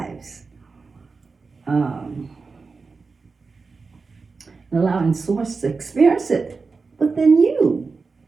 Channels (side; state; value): left; quieter; 4.4 dB